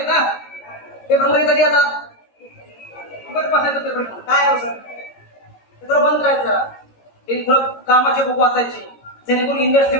ना, पेपर मध्ये कधी आता पेपर काय सर, थोडं बंद करायचं. ते थोडं कामाचे बुक वाचायचे, जेणेकरून इंडस्ट्री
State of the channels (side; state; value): right; late; 16 ms